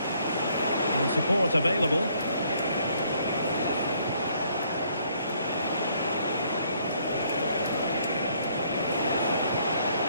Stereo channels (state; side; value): inverted; both; correlation -0.66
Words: And support available.